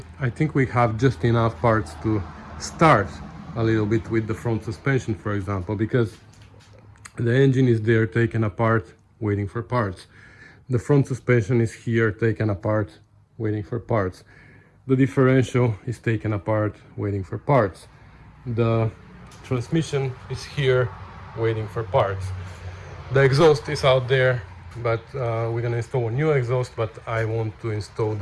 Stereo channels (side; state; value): both; identical; correlation 1.00